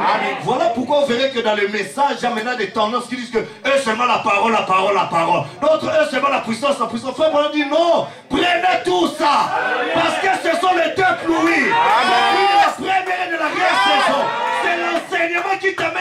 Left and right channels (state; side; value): identical; both; correlation 1.00